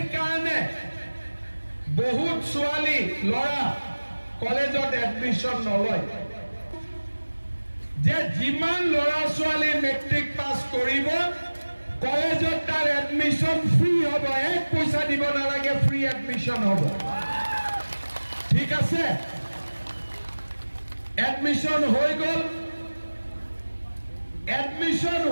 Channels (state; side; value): inverted; both; correlation -1.00